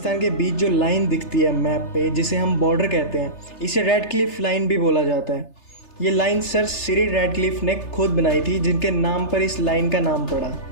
के बीच जो लाइन दिखती है मैप पे, जिसे हम बॉर्डर कहते हैं, इसे रेड क्लिफ लाइन भी बोला जाता है। ये लाइन सर सिरिल रैडक्लिफ ने खुद बनाई थी, जिनके नाम पर इस लाइन का नाम पड़ा।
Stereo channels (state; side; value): late; right; 3.3 ms